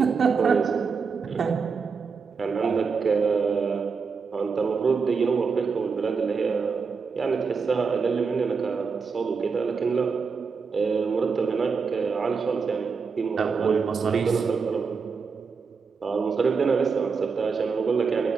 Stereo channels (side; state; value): left; quieter; 5.3 dB